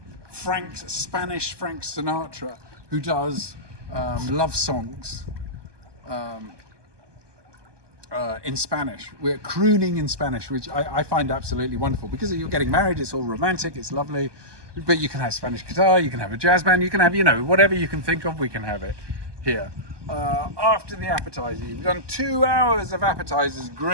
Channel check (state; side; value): late; left; 1.2 ms